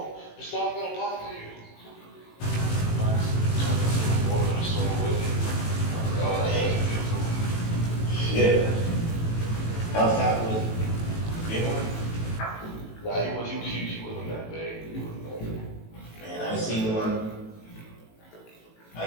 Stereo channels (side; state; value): right; late; 18 ms